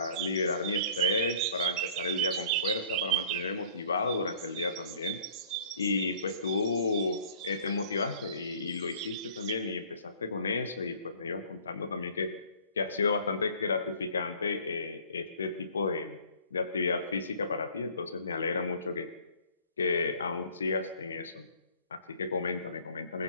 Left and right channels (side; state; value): both; inverted; correlation -0.52